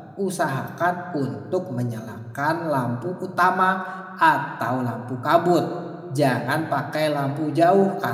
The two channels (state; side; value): identical; both; correlation 1.00